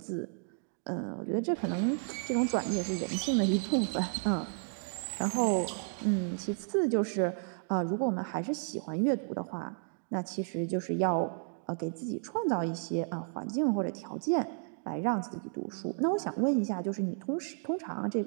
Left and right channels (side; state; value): left; silent; 56 dB below the other